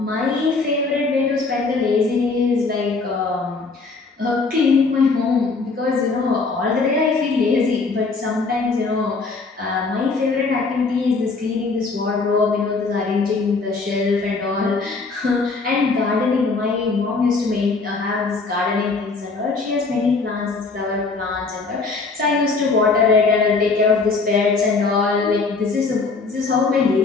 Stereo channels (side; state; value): right; quieter; 4.2 dB